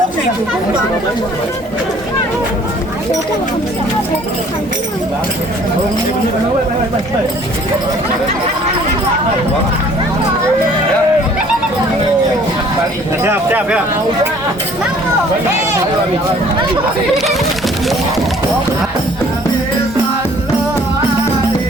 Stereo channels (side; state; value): both; normal; correlation 0.55